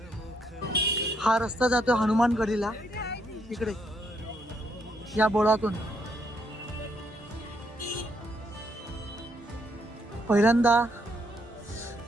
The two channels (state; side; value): normal; both; correlation 0.74